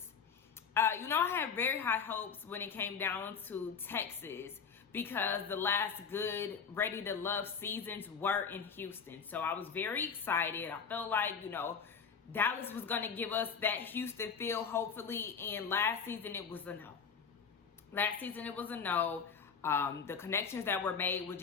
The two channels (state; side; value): quieter; right; 6.2 dB